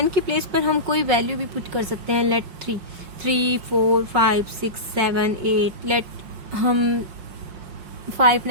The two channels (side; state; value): left; late; 5.4 ms